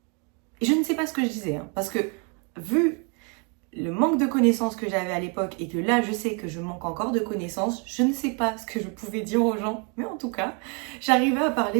Et je ne sais pas ce que je disais, hein, parce que vu le manque de connaissances que j'avais à l'époque et que là, je sais que je manque encore de connaissances, je ne sais pas ce que je pouvais dire aux gens, mais en tout cas, j'arrivais à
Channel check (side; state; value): left; quieter; 35.6 dB